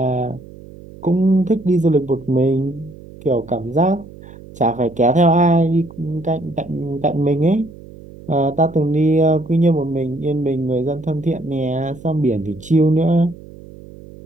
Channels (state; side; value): noise; right; hum, 18 dB below the sound